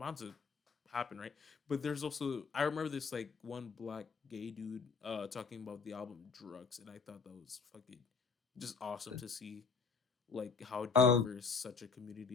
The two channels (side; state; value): right; quieter; 5.3 dB